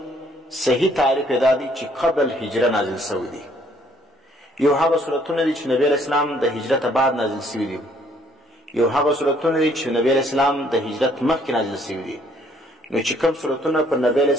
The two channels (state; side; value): normal; both; correlation 0.64